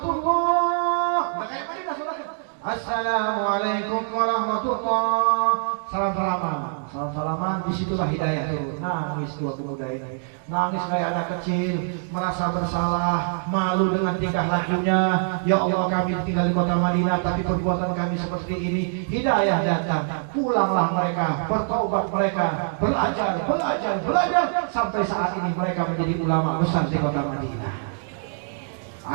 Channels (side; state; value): left; silent; digital silence